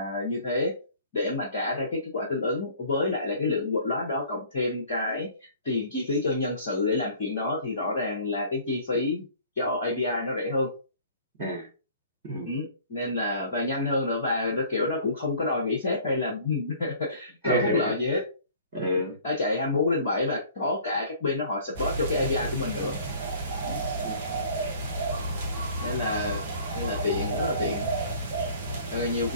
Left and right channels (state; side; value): inverted; both; correlation -0.50